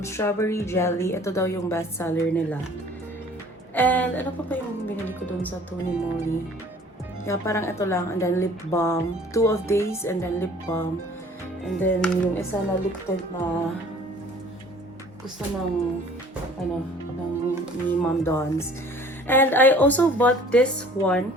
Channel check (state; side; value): normal; both; correlation 0.51